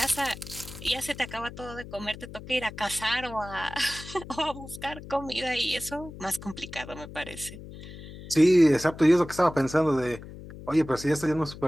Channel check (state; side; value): noise; left; hum, 14 dB below the sound